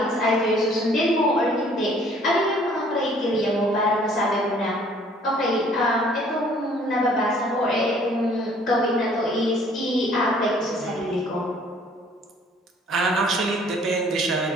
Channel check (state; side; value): normal; both; correlation 0.57